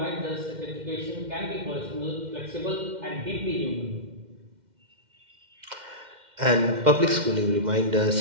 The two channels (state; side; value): late; left; 2.1 ms